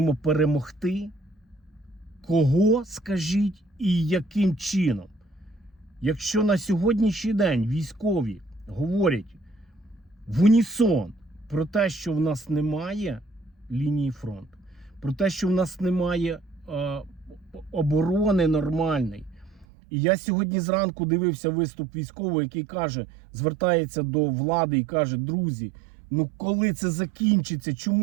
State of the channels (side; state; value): left; drops out; at 19.7 s